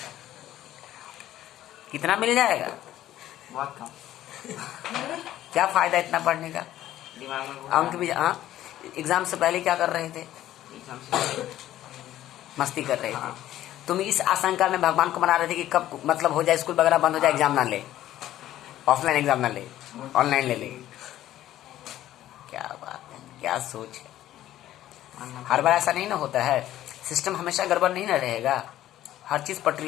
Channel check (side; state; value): right; quieter; 13.3 dB